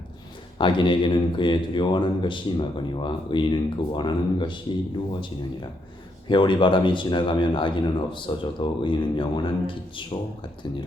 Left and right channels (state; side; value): normal; both; correlation 0.76